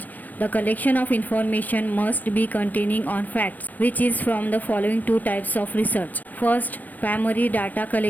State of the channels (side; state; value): right; late; 0.085 ms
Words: The collection of information must be containing on facts, which is from the following two types of research. First, primary data